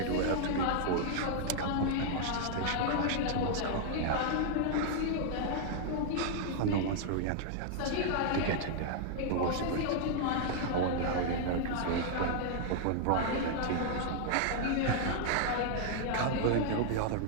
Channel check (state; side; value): different; both; correlation -0.01